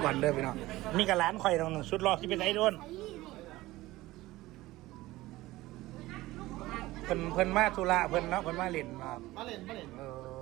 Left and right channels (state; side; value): quieter; left; 18.1 dB